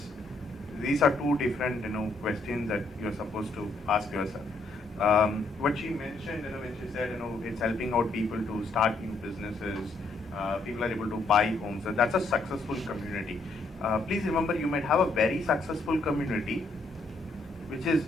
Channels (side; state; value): right; quieter; 3.2 dB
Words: These are two different, questions that you're supposed to ask yourself. What she mentioned, when she said, it's helping out people to start new businesses, people are able to buy homes, and that's a successful community. Please remember, you might have a very successful community which is